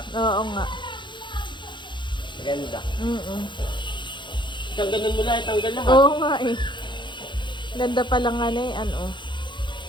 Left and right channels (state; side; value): late; right; 0.23 ms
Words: Oo nga. Maganda. Mm-mm. Tanggalan mo lang, tanggal lahat. Oo nga eh. Ganda pa lang nga na eh, ano. Oh.